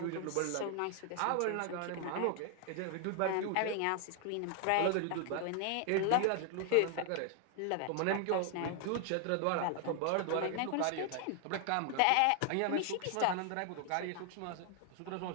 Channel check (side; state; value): both; different; correlation 0.00